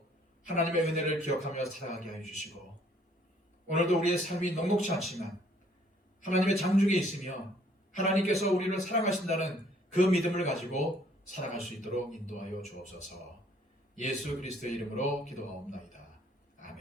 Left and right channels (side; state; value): both; normal; correlation 0.62